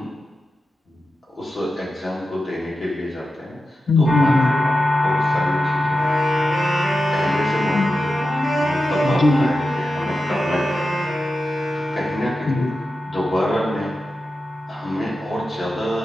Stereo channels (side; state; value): both; normal; correlation 0.91